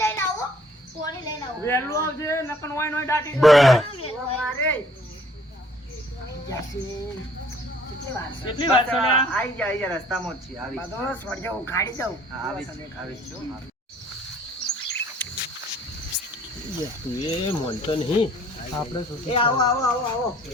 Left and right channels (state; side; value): normal; both; correlation 0.59